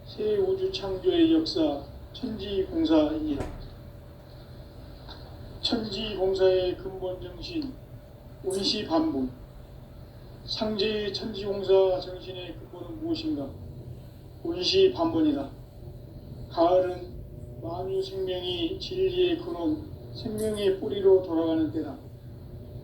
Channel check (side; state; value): both; identical; correlation 1.00